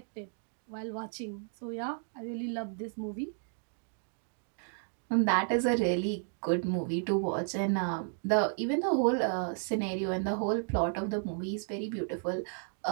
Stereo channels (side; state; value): left; silent; digital silence